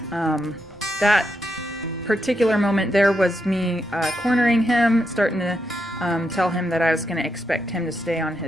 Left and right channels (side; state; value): both; normal; correlation 0.82